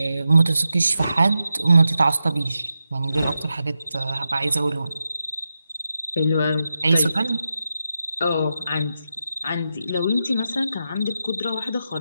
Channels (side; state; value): both; inverted; correlation -0.89